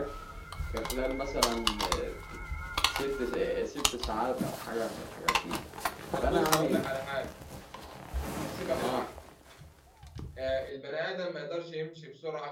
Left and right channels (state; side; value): identical; both; correlation 1.00